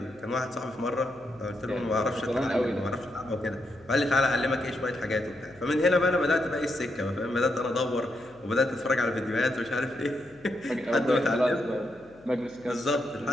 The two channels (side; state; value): left; noise; hum, 27 dB below the sound